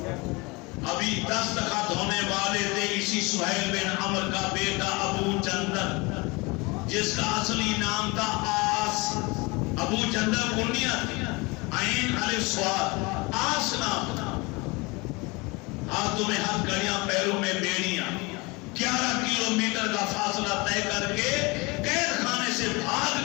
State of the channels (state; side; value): quieter; right; 26.0 dB